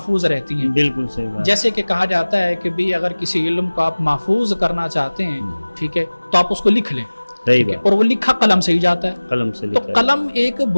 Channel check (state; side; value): inverted; both; correlation -1.00